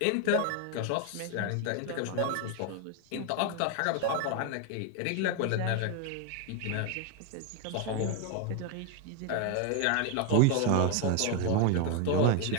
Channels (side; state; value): both; different; correlation 0.01